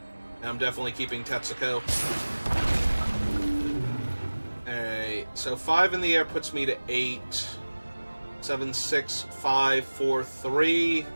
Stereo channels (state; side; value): inverted; both; correlation -1.00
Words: And I'm definitely keeping Tetsuko. Alright, so 5 in the air puts me to 8. 7, 6, 5, 4, 3.